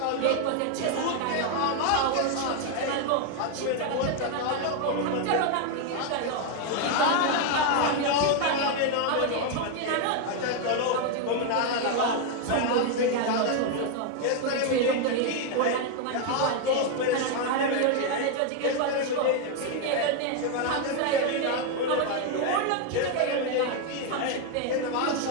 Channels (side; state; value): both; different; correlation 0.01